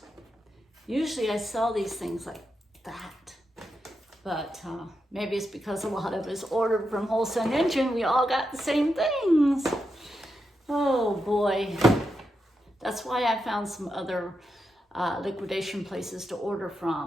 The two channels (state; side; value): normal; both; correlation 0.86